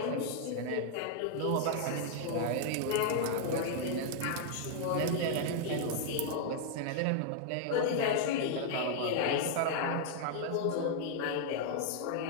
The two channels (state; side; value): different; both; correlation -0.01